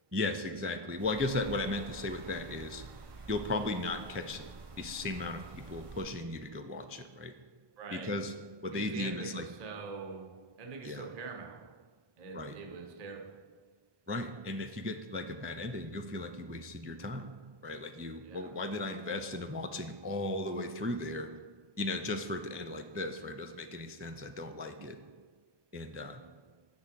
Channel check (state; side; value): late; left; 1.2 ms